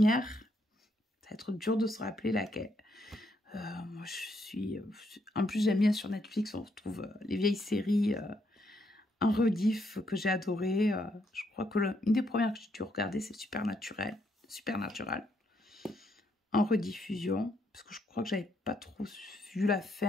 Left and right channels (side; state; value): both; normal; correlation 0.75